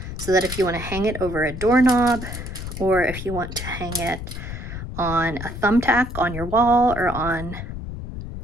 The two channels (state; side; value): noise; left; rumble, 8 dB below the sound